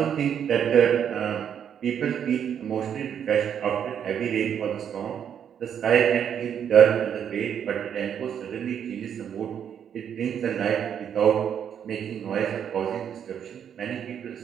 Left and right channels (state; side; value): quieter; left; 8.6 dB